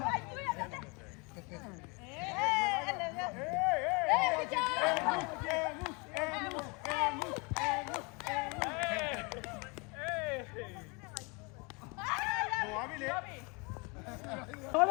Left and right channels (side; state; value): right; quieter; 30.2 dB